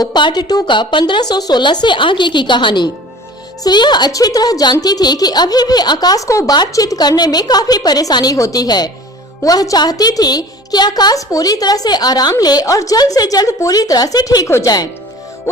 पार्ट 2 का 1516 से आगे की कहानी। श्रेया अच्छी तरह जानती थी कि अभी भी आकाश को बातचीत करने में काफी परेशानी होती है। वह चाहती थी कि आकाश पूरी तरह से आराम ले और जल्द से जल्द पूरी तरह से ठीक हो जाए।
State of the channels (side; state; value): both; normal; correlation 0.43